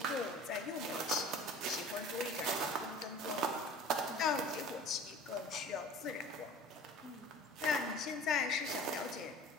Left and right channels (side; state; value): both; normal; correlation 0.42